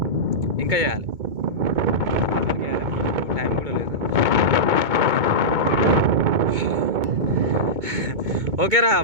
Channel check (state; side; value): late; left; 2.2 ms